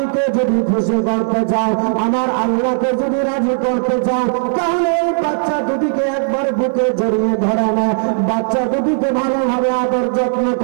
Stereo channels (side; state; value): left; silent; digital silence